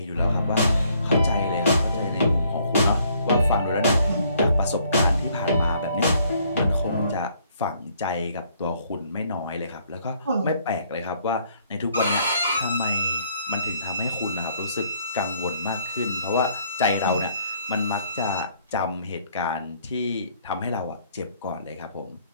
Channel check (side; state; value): both; inverted; correlation -0.65